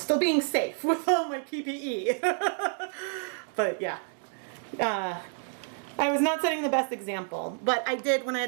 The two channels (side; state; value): left; silent; 58 dB below the other